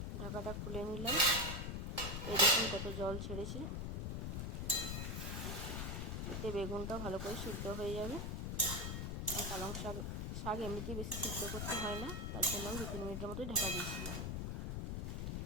ঢাকাটা খুলে নিলাম। এই দেখুন কত জল ছেড়েছে। এতে বেগুনটাও ভালো করে সিদ্ধ হয়ে যাবে। আর পালং শাক এমনিতেই বেশি সিদ্ধ করতে হয় না, তার জন্য আমি 2-3 মিনিটের মতোই ঢাকা দিয়েছিলাম।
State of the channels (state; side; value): noise; left; rumble, 2 dB below the sound